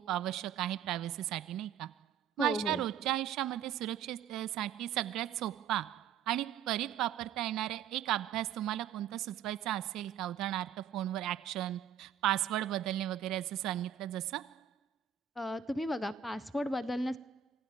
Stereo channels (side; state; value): left; quieter; 8.6 dB